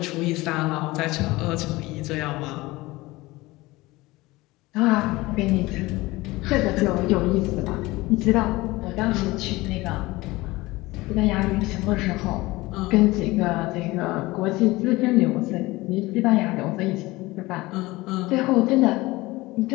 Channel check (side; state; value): right; quieter; 20.4 dB